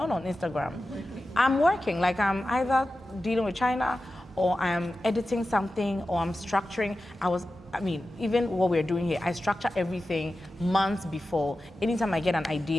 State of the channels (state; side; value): normal; both; correlation 0.93